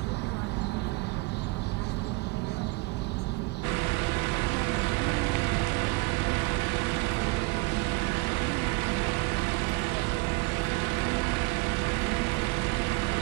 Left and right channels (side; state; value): left; quieter; 25.7 dB